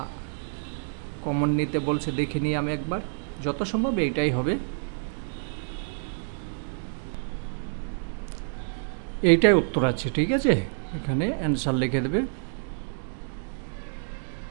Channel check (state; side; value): silent; left; digital silence